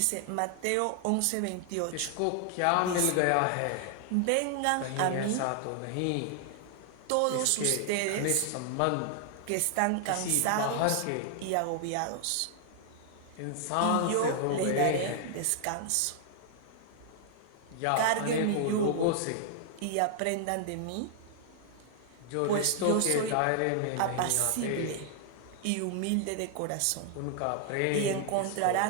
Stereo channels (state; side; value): different; both; correlation 0.00